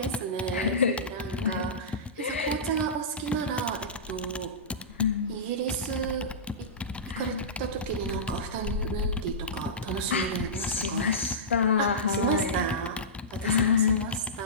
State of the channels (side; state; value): both; normal; correlation -0.18